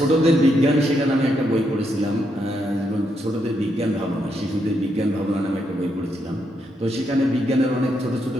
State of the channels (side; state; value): both; normal; correlation 0.79